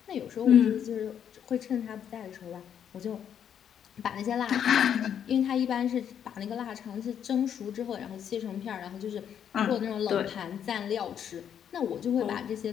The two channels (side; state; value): right; quieter; 8.8 dB